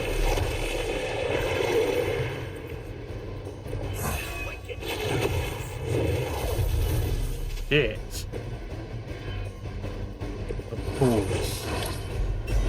Shit. Of course.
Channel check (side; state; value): both; identical; correlation 1.00